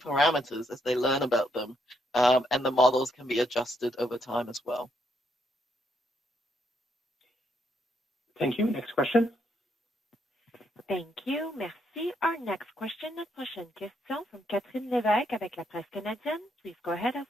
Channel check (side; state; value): both; normal; correlation 0.75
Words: as they learn about them. And the models can be adjusted over time as well. Thank you. Next question. Thank you. Merci. Our next question, notre prochaine question from Catherine Lévesque avec la presse canadienne. Please go ahead, à